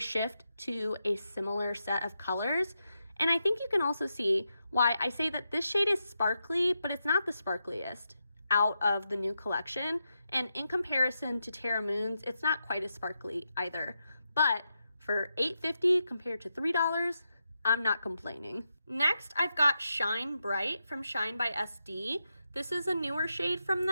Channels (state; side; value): inverted; both; correlation -0.86